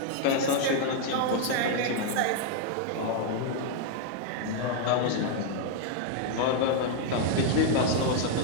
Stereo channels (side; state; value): both; different; correlation 0.00